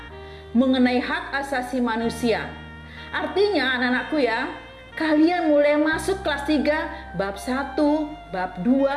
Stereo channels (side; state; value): both; identical; correlation 1.00